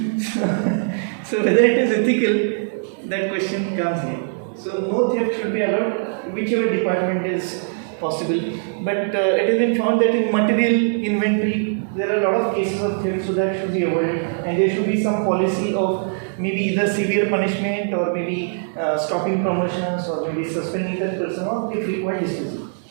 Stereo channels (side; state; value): left; silent; digital silence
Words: So whether it is ethical, that question comes here. So no theft should be allowed, whichever department is possible. But it has been found that in material inventory, there are a lot of cases of theft, so that should be avoided, and there should be some policy of maybe either severe punishment or maybe stopping promotions or maybe suspending that person or if required dismissal